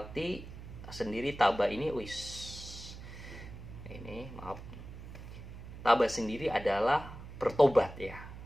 sendiri tabah ini maaf, tabah sendiri adalah bertobat ya.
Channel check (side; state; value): right; noise; hum, 13 dB below the sound